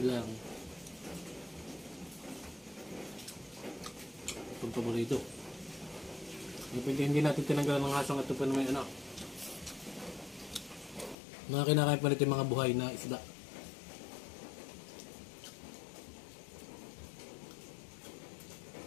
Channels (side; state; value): right; drops out; at 11.2 s